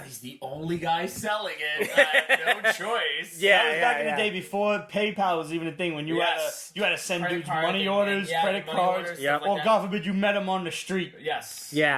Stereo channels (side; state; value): both; identical; correlation 1.00